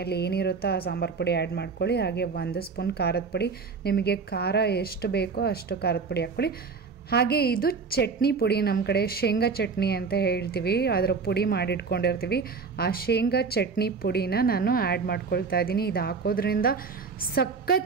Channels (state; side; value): quieter; left; 5.0 dB